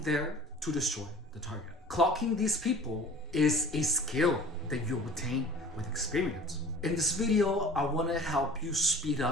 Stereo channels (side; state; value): both; normal; correlation 0.44